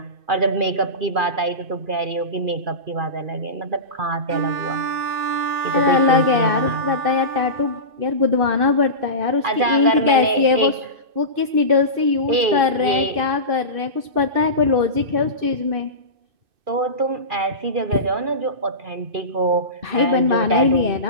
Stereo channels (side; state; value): left; late; 2.6 ms